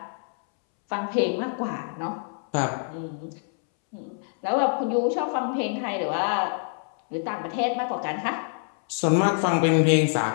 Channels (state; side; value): silent; right; 61 dB below the other